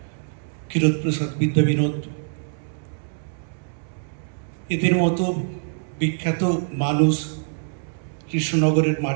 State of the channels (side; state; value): left; silent; 62 dB below the other